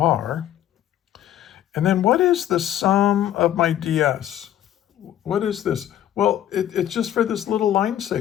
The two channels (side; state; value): right; quieter; 11.7 dB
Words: And then what is the sum of my ds? What is this? Well, it's just for this little line